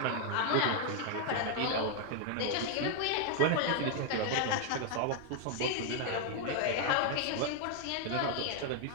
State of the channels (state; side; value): different; both; correlation 0.01